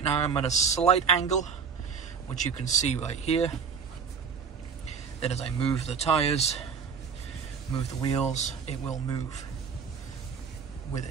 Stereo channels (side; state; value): left; quieter; 6.3 dB